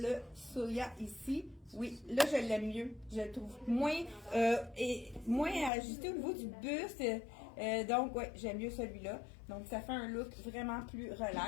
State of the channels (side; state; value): right; drops out; at 5.7 s